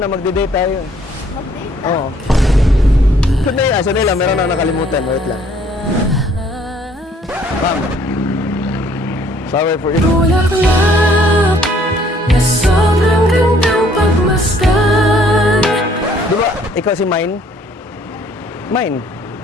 magde-date tayo. Mag-date? Oo. Sandali lang, meron na nakalimutan. Wait lang. Ma'am. Sorry for you. Bulaklak na sobrang gandang pagmasdan. Di ba, ikaw si Mine? Mine?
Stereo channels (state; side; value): normal; both; correlation 0.61